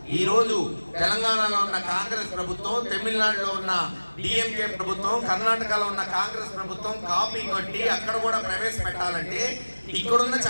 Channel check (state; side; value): inverted; both; correlation -1.00